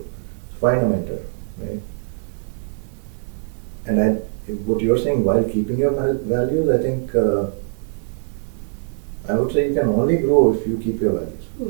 So find a mentor, right? And what you're saying, while keeping your values, I think I would say you can only grow if you keep your values,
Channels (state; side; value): silent; left; digital silence